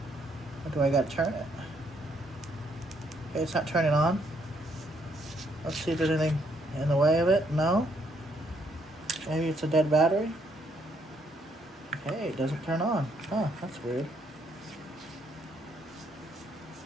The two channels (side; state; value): both; normal; correlation 0.71